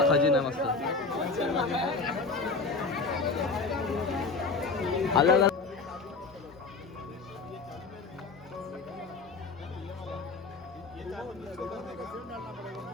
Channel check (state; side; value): quieter; right; 4.2 dB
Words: खजिना आहे मस्त. अलग अलग.